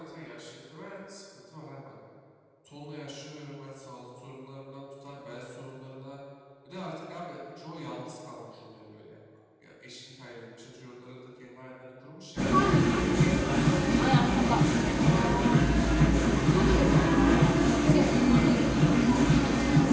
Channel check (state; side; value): identical; both; correlation 1.00